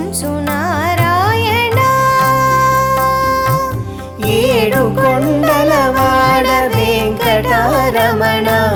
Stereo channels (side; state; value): both; identical; correlation 1.00